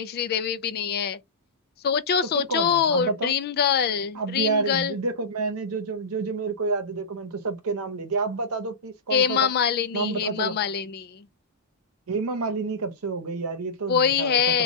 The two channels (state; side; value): quieter; right; 3.2 dB